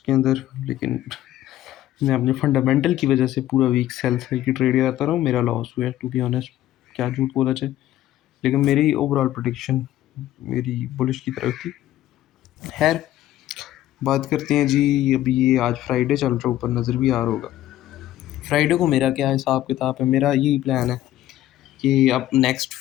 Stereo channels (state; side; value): quieter; right; 13.6 dB